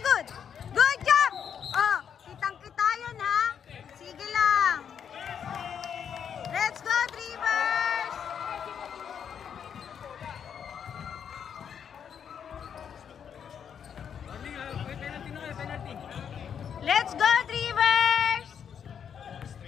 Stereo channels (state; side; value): quieter; right; 7.9 dB